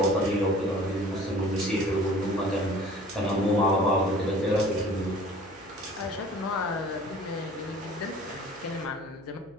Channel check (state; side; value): noise; left; hum, 28 dB below the sound